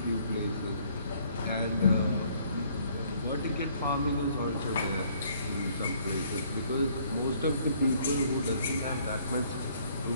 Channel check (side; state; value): both; inverted; correlation -0.62